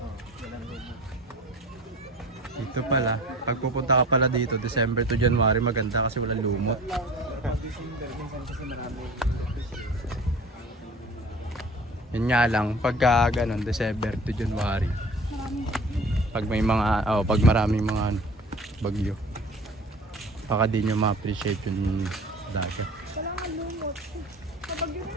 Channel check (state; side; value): normal; both; correlation 0.42